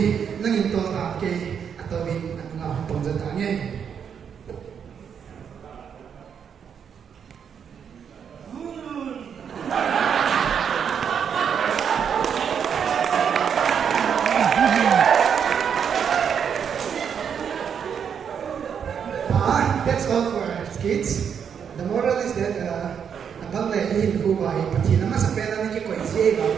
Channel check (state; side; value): quieter; left; 7.5 dB